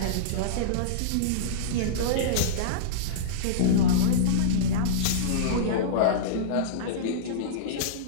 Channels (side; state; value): both; different; correlation -0.04